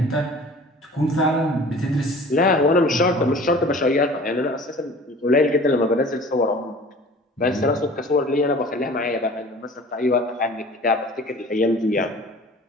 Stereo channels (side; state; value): both; normal; correlation 0.45